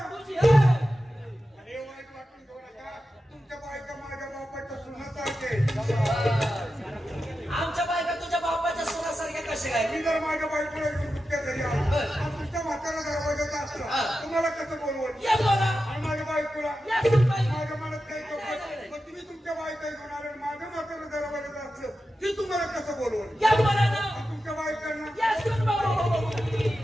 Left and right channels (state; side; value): normal; both; correlation 0.91